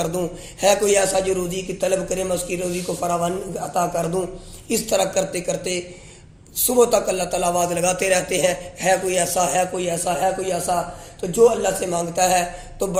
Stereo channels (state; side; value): identical; both; correlation 1.00